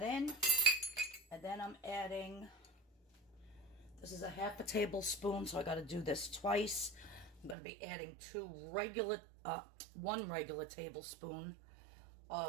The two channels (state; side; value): drops out; left; at 7.6 s